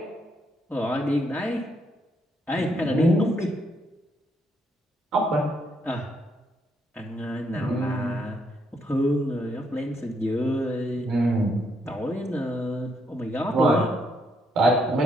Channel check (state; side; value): normal; both; correlation 0.75